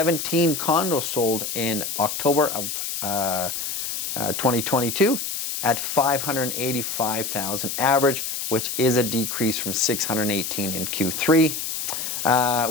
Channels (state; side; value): noise; left; hiss, 4 dB below the sound